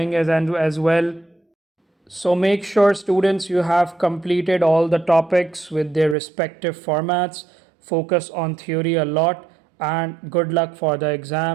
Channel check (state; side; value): drops out; left; at 6.2 s